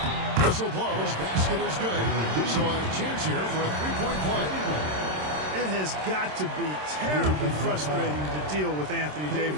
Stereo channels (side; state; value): left; late; 27 ms